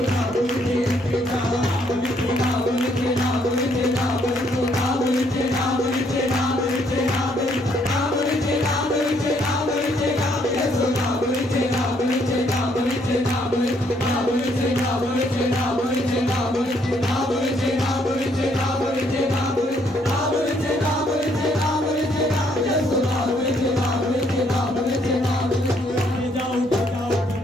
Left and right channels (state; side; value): normal; both; correlation 0.69